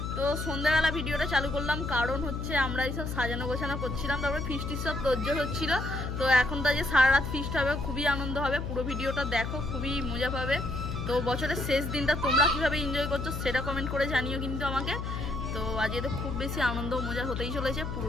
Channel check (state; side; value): noise; left; hum, 4 dB below the sound